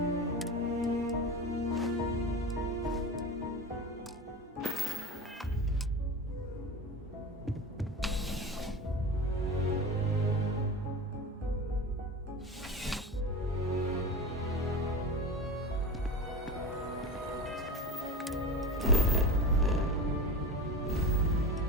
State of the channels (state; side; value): normal; both; correlation 0.27